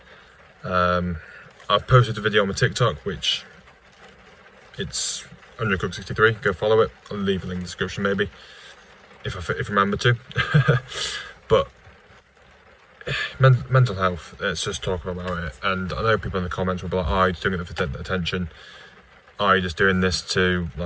I've posted a video on my TikTok, which it's Undercook63. Go follow it. I'll leave a link in the description maybe, if I remember to. But mental health, let's just talk about it. And I know people in the comments will be like, "Oh, you're doing it for attention. Oh, you're just doing this to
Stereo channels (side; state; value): both; identical; correlation 1.00